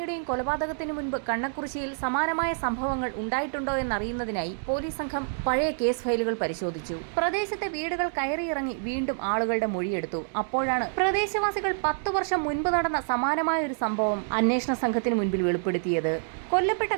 കൊലപാതകത്തിന് മുൻപ് കണ്ണക്കുറിശ്ശിയിൽ സമാനമായ സംഭവങ്ങൾ ഉണ്ടായിട്ടുണ്ടോ എന്നറിയുന്നതിനായി പോലീസ് സംഘം പഴയ കേസ് ഫയലുകൾ പരിശോധിച്ചു. പ്രദേശത്തെ വീടുകൾ കയറിയിറങ്ങി വീണ്ടും ആളുകളുടെ മൊഴിയെടുത്തു. അപ്പോഴാണ് പ്രദേശവാസികൾ 10 വർഷം മുൻപ് നടന്ന സമാനമായ ഒരു സംഭവം അന്വേഷണ സംഘത്തിന് മുൻപിൽ വെളിപ്പെടുത്തിയത്. കൊല്ലപ്പെട്ട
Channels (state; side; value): silent; left; digital silence